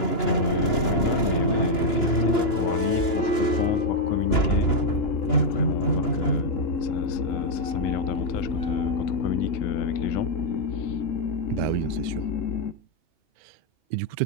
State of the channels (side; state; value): right; late; 2.9 ms